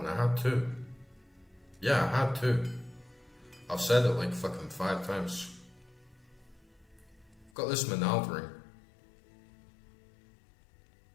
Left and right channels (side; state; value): right; drops out; at 7.5 s